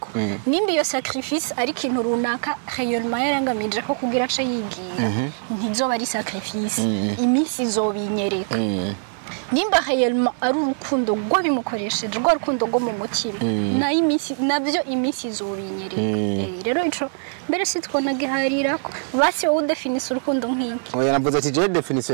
nimba iyo sacrifice ari kintu runaka réellement yarangamije ko kugira ace yigiye ntizoba ari sacrifice iminsi izobinyereka nimba réellement ari urukundo rwo bimukoresheje rwo rukundo rwo mu mutima na iminsi nabyo iminsi izobinyereka rero ico mbere sitwona giharira ko basi wowe definise urukundo nk'iki oya navuze ati je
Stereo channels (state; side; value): silent; left; digital silence